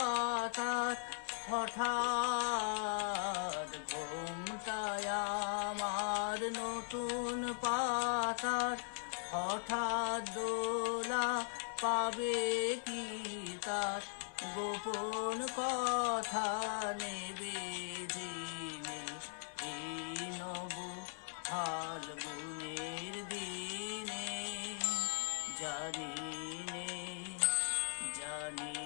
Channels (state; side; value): silent; right; 52 dB below the other